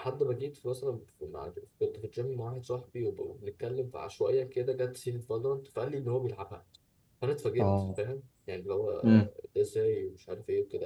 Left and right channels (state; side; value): identical; both; correlation 1.00